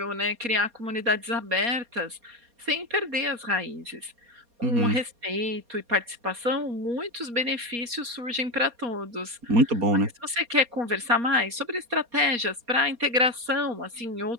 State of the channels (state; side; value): late; left; 4.2 ms